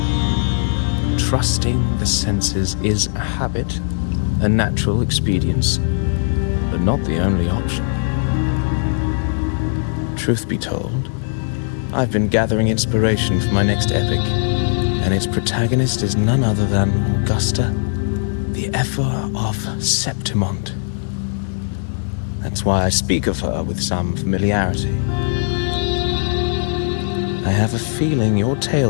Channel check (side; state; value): right; silent; digital silence